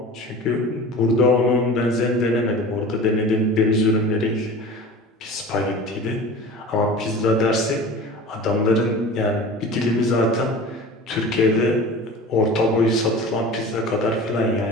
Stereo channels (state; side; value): normal; both; correlation 0.37